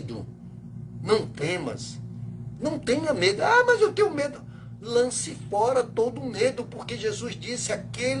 não temas, não tenha medo. Ah, mas eu tenho medo. Lance fora todo medo, porque Jesus disse:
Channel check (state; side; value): identical; both; correlation 1.00